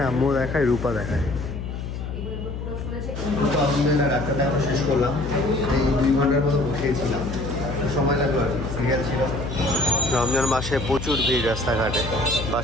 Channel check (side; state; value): left; noise; hum, 6 dB below the sound